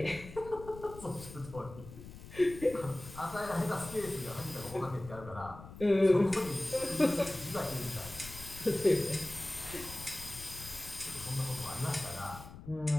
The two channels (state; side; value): noise; left; rumble, 15 dB below the sound